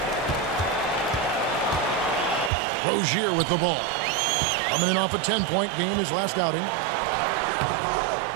Rozier with the ball. Coming in off a 10-point game his last outing.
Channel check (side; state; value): left; drops out; at 2.5 s